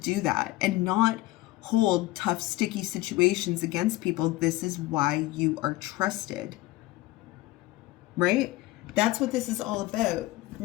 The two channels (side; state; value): right; quieter; 18.3 dB